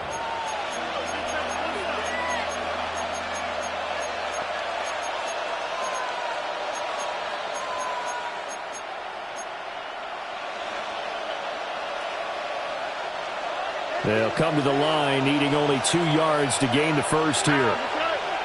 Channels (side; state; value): both; identical; correlation 1.00